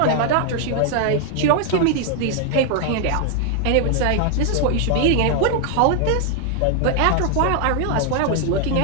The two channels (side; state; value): both; different; correlation 0.00